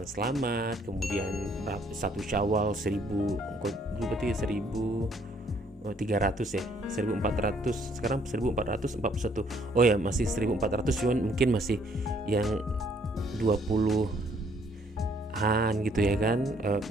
selamat, kemudian 1 Syawal 1300 ya, 1400, sekarang 1441. Oh ya, masih 1400, cuman mungkin masih yang 20-an gitu ya kan,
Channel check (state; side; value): normal; both; correlation 0.65